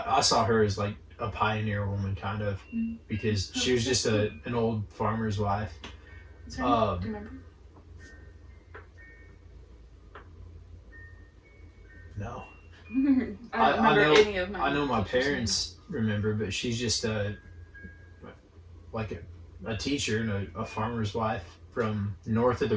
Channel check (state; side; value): identical; both; correlation 1.00